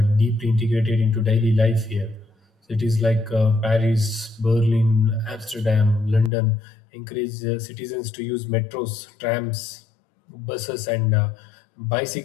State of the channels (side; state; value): right; drops out; at 6.3 s